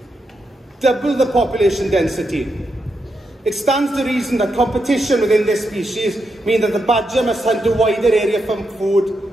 Double the population density. It stands to reason that competition within this species means that the badger must hunt a wider area for food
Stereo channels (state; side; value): normal; both; correlation 0.84